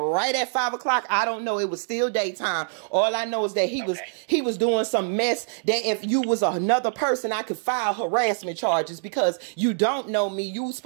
at 5 o'clock. I don't know. It was still daytime. All I know is that he was doing some mess that if you was another person, I could file harassment charges because you don't know me. You was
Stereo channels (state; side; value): silent; left; digital silence